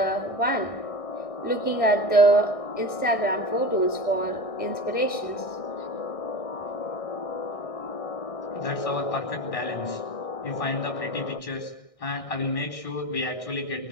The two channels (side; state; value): right; late; 1.6 ms